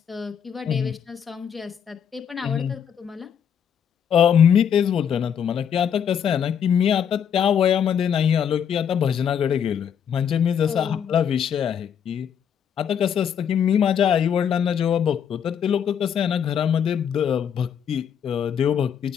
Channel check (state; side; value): quieter; right; 8.2 dB